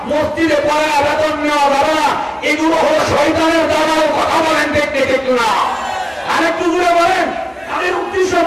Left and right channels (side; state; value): both; identical; correlation 1.00